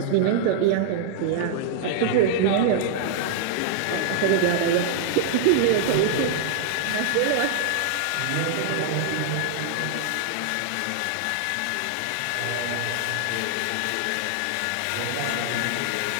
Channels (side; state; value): both; different; correlation -0.01